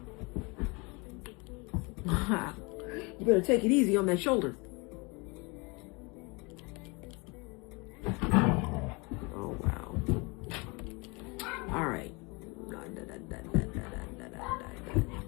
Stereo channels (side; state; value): right; quieter; 28.5 dB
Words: You better take it easy on that shoulder. Oh, wow. All right.